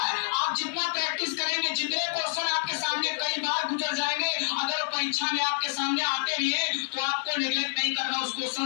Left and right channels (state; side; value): silent; right; digital silence